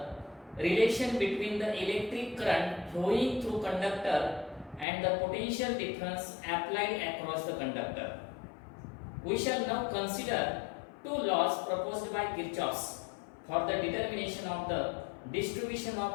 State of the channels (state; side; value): drops out; right; at 4.9 s